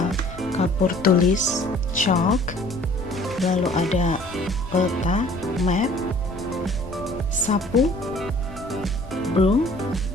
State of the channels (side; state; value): left; noise; rumble, 15 dB below the sound